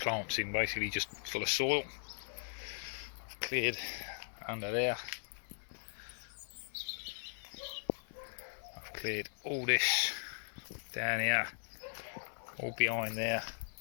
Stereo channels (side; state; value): right; silent; 52 dB below the other